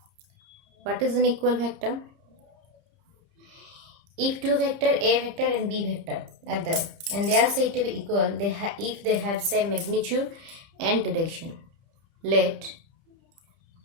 What is an equal vector? If two vector A vector and B vector are there and they are said to be equal, if they have same magnitude and direction. Let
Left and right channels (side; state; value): left; late; 30 ms